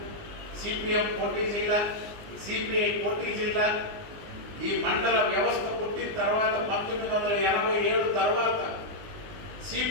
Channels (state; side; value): late; left; 19 ms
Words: సిపిఎం పోటీ చేయాల, సిపిఐ పోటీ చేయాల. ఈ మండల వ్యవస్థ పుట్టిన తర్వాత 1987 తర్వాత